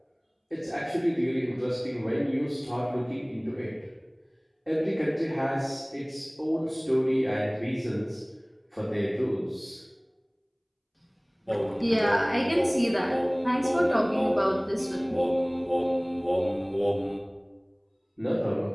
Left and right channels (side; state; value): both; identical; correlation 1.00